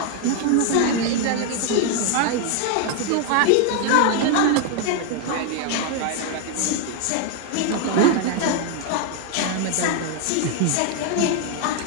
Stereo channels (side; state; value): both; different; correlation 0.01